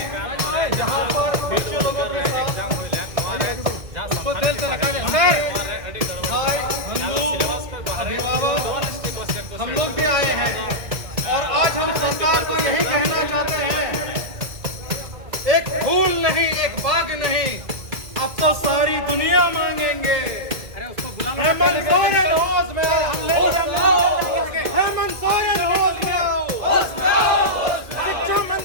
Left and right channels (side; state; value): left; late; 2.0 ms